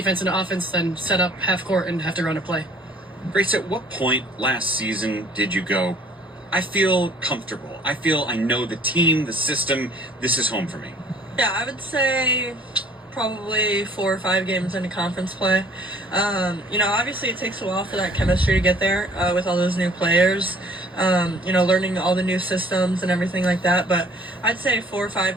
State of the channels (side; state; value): both; normal; correlation 0.55